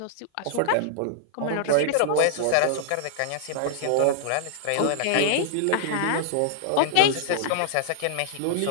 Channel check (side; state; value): both; different; correlation -0.01